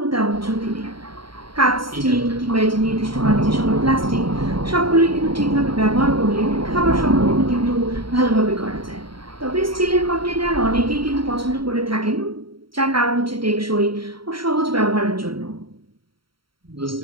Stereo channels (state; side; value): late; left; 0.74 ms